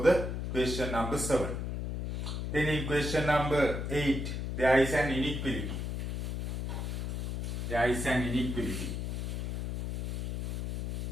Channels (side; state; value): left; noise; hum, 2 dB below the sound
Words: the question number 7. Then in question number 8, there is an inequality.